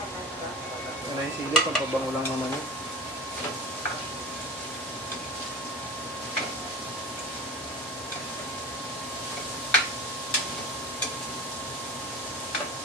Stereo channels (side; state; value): both; normal; correlation 0.33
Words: Ano yung sili? Pampabango lang naman yun.